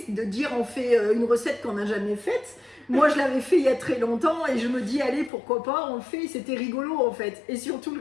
de dire on fait une recette qu'on n'a jamais faite. Moi je l'avais fait il y a très longtemps et je me dis allez pourquoi pas, on le fait, c'était rigolo en fait. Et surtout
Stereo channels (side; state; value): right; drops out; at 5.3 s